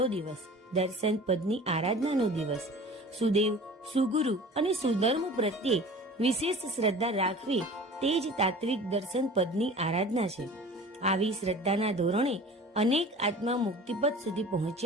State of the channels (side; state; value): both; normal; correlation 0.41